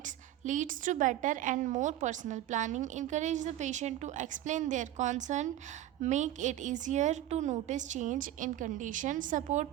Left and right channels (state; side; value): quieter; left; 13.3 dB